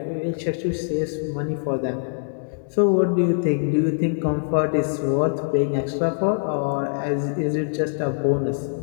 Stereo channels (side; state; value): right; silent; digital silence